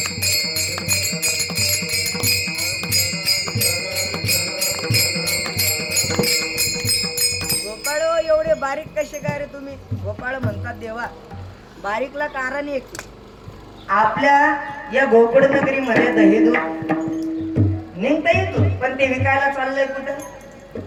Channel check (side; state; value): both; identical; correlation 1.00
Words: गोपाळ एवढे बारीक कसे काय रे तुम्ही? गोपाळ म्हणतात देवा, बारीकला कारण एक, आपल्या या गोकुळ नगरीमध्ये दही दूध निघता येतो, पण ते विकायला चाललंय कुठं?